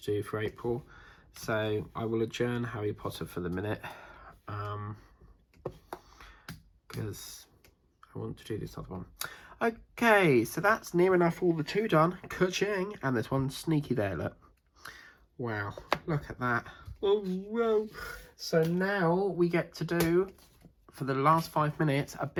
do for April. So I will adjourn Harry Potter for the minute, because I want to do this other one. Okay, so that's near enough all the 2 done. Ka-ching! And there's one sneaky there, look. Wow, look at that. Oh, whoa. So now we get to do, for the last 5 minutes, a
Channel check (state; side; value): identical; both; correlation 1.00